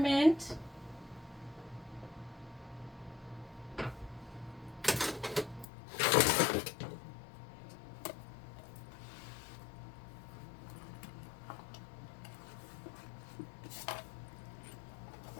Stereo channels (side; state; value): right; drops out; at 5.7 s